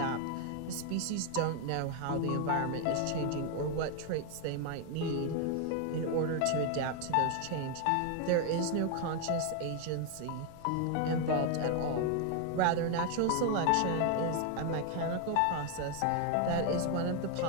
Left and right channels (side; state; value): both; different; correlation 0.01